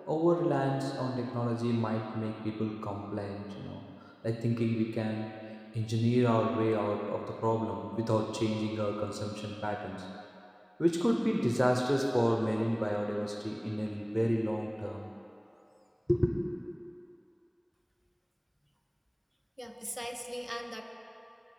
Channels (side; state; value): both; identical; correlation 1.00